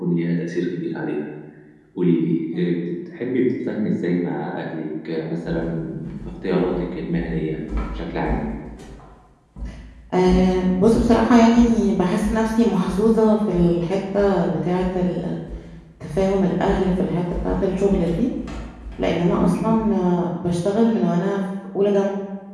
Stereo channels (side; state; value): both; identical; correlation 1.00